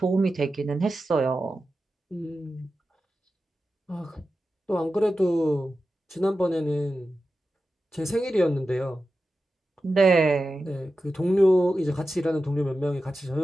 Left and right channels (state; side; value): normal; both; correlation 0.92